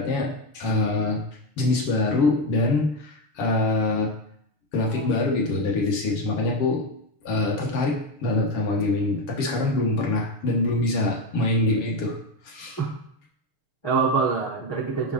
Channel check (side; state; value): right; late; 7.2 ms